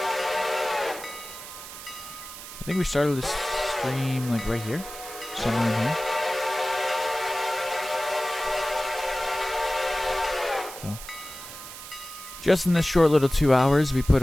I think we started this stream like right here. Somewhere in here. So, just in this short little 2 hours, we put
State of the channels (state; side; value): noise; right; hiss, 12 dB below the sound